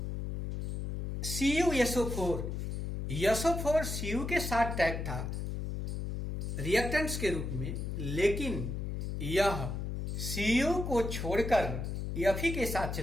CuSO4 Cu के साथ tag था reactants के रूप में, लेकिन यह Cu को छोड़कर Fe के साथ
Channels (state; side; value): noise; left; hum, 3 dB below the sound